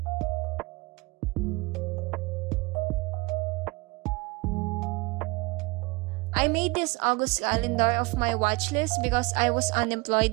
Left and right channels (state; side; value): quieter; left; 25.0 dB